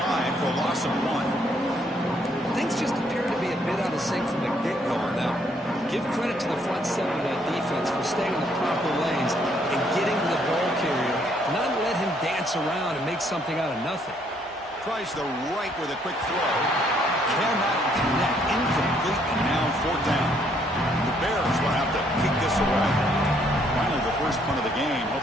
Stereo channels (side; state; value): both; normal; correlation 0.68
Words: for a loss of 1. Things just appear to be a bit out of sync from the get-go on that one. Give credit to the front seven of that defense for staying in the proper lanes and getting to the ball carrier, not let him dance around and make something out of nothing. Tries the right with a quick throw. Cannot connect. Incomplete, and now 4th down. The Bears will have to kick this away. Finally, the first punt of the game,